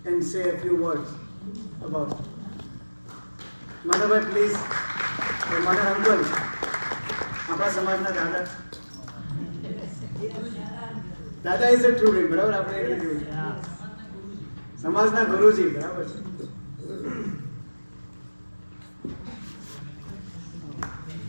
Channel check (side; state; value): both; inverted; correlation -1.00